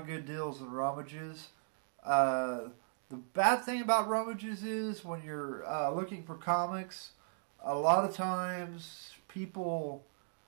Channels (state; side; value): silent; left; digital silence